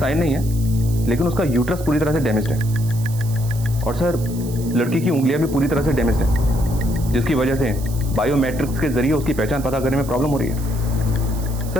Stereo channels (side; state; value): right; noise; hiss, 16 dB below the sound